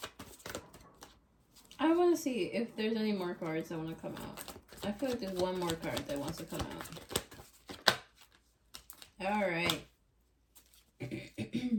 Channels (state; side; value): identical; both; correlation 1.00